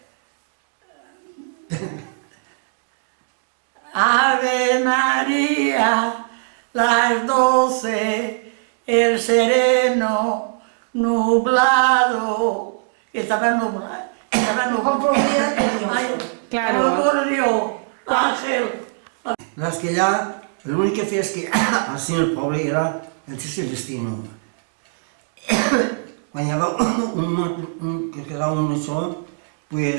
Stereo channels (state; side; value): silent; left; digital silence